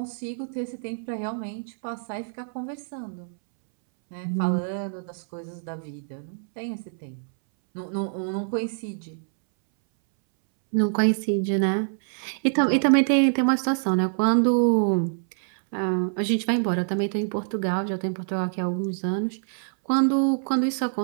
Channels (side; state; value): left; silent; 61 dB below the other